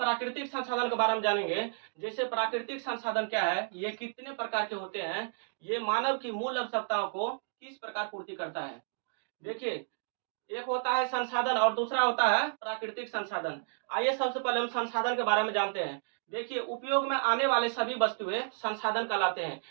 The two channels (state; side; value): silent; left; digital silence